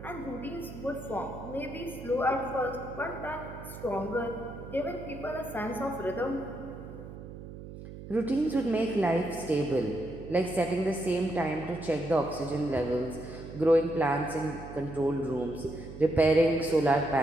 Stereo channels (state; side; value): noise; right; hum, 12 dB below the sound